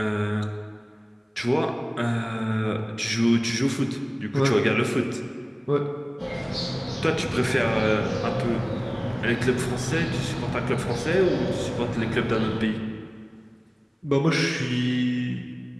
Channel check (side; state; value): both; identical; correlation 1.00